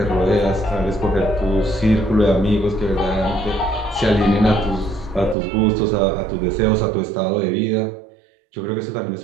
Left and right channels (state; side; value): drops out; left; at 5.4 s